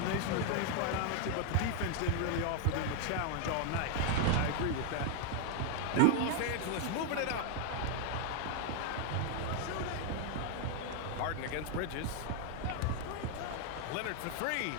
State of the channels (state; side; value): different; both; correlation 0.00